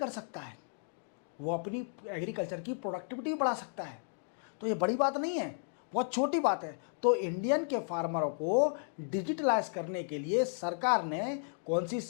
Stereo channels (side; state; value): right; silent; digital silence